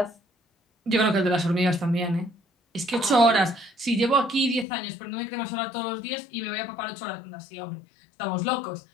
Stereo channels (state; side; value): drops out; right; at 4.7 s